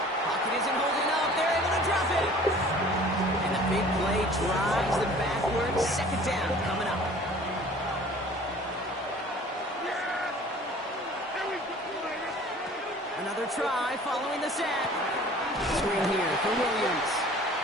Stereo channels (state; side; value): normal; both; correlation 0.48